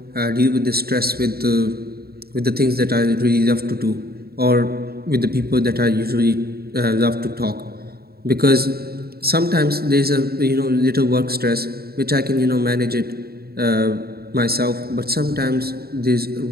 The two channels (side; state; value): left; late; 0.45 ms